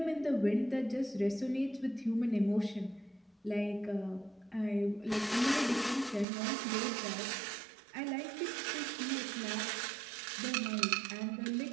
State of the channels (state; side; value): drops out; left; at 6.2 s